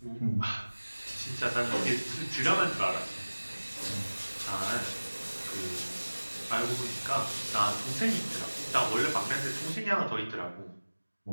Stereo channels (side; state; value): both; inverted; correlation -1.00